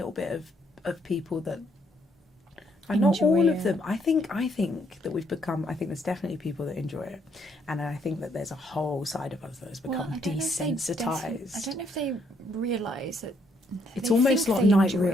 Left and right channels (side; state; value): both; normal; correlation 0.71